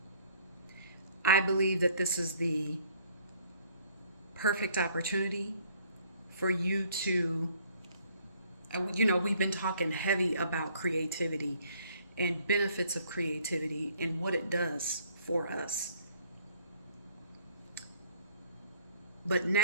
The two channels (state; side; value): inverted; both; correlation -0.60